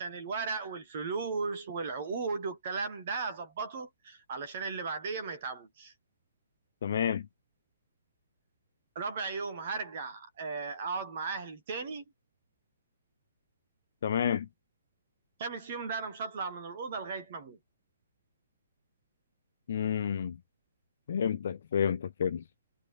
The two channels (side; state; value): both; inverted; correlation -0.63